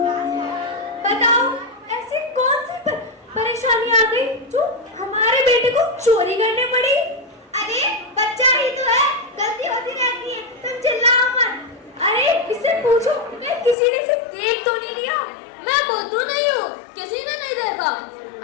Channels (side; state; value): right; drops out; at 13.8 s